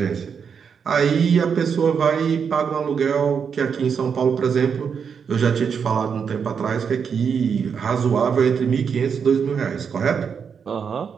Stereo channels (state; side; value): quieter; left; 6.6 dB